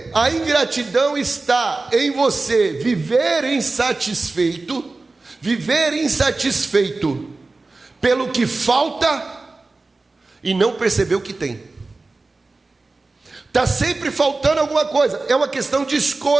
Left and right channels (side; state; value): left; quieter; 3.5 dB